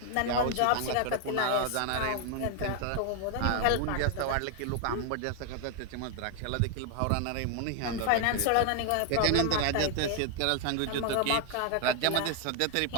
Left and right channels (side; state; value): both; different; correlation 0.01